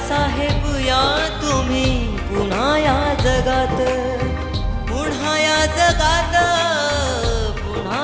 या तुम्ही पुन्हा या जगात, पुन्हा या जगात,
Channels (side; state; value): both; identical; correlation 1.00